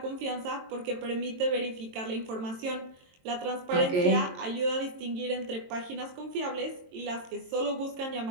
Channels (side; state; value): left; late; 22 ms